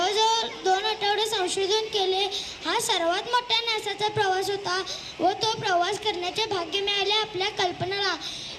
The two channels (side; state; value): both; identical; correlation 1.00